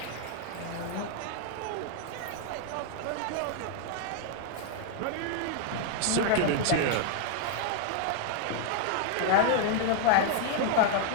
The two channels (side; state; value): both; different; correlation 0.00